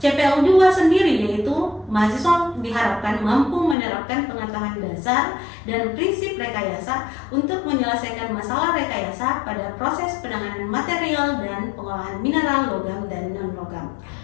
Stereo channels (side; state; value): right; drops out; at 3.8 s